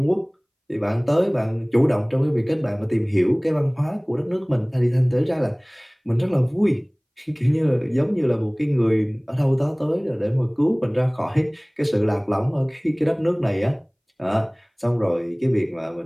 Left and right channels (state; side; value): identical; both; correlation 1.00